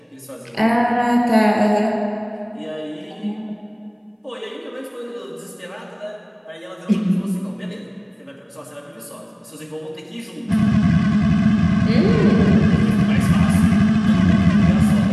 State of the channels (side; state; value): both; identical; correlation 1.00